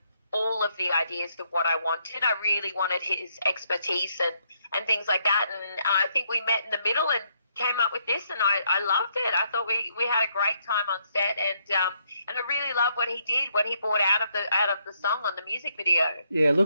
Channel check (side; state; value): both; inverted; correlation -0.74